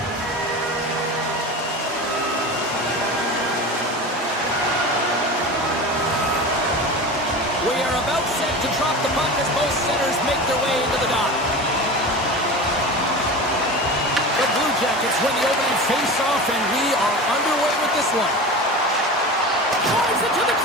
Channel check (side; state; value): both; normal; correlation 0.30